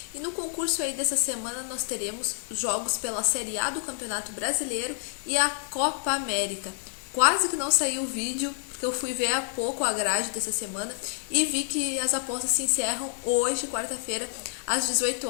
E no concurso aí dessa semana nós teremos jogos pela Série A do Campeonato Brasileiro e a Copa América. Quase que não saiu o vídeo, porque eu fui ver há pouco a grade dessa semana e vi que as apostas se encerram hoje, quarta-feira, às 18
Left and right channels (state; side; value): silent; right; 59 dB below the other